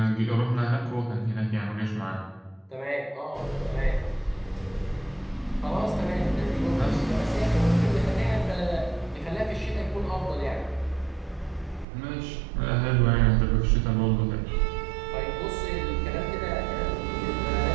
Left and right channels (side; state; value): left; drops out; at 11.9 s